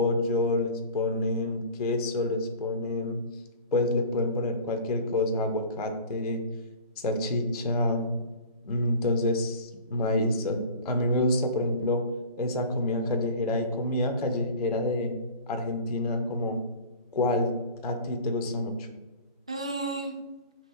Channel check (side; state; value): both; inverted; correlation -0.40